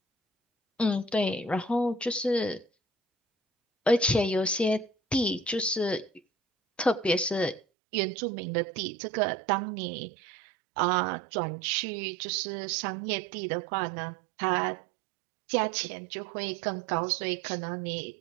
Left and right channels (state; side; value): drops out; left; at 7.6 s